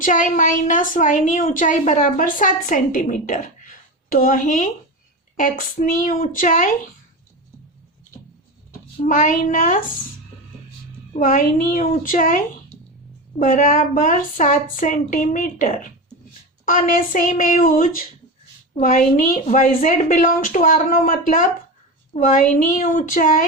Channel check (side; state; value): both; normal; correlation 0.22